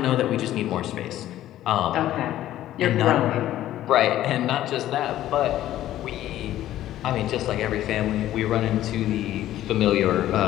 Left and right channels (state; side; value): quieter; right; 13.4 dB